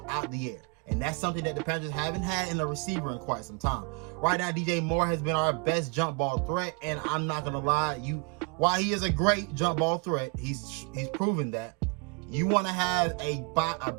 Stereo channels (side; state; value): left; quieter; 34.2 dB